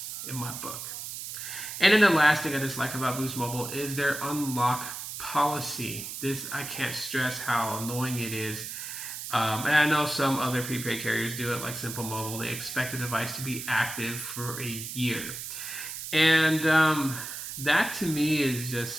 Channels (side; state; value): right; noise; hiss, 8 dB below the sound